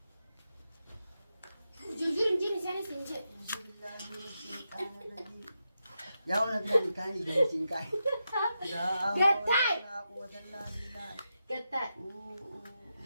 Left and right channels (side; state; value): both; inverted; correlation -0.87